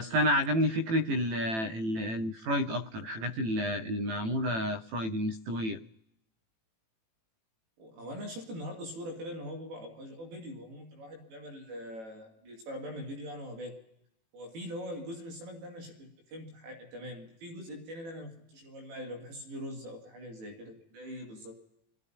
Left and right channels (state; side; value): late; left; 18 ms